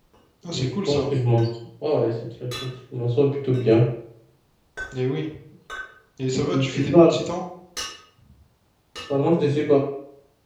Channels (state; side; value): identical; both; correlation 1.00